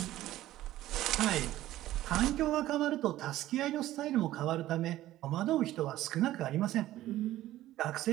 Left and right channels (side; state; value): left; quieter; 14.7 dB